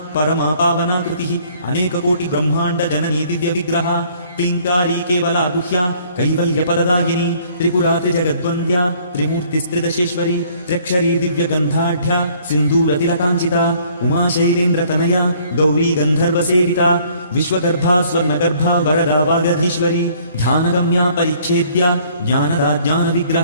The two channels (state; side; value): inverted; both; correlation -0.59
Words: परमा पावना कृतिः अनेककोटिब्रह्माण्डजननी दिव्यविग्रहा क्लीङ्कारी केवला गुह्या कैवल्यपरदायिनी त्रिपुरा त्रिजगद्वन्द्या त्रिमूर्तिस्त्रिदशेश्वरी त्र्यक्षरी दिव्यगन्धाढ्या सिन्दूरतिलकाञ्चिता उमाशैलेन्द्रतनया गौरी गन्धर्वसेविता विश्वगर्भा स्वर्णगर्भा वरदा वागधीश्वरी ध्यानगम्या परिच्छेद्या ज्ञानदा